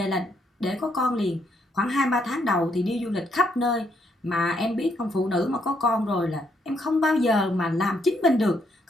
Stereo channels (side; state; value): both; normal; correlation 0.74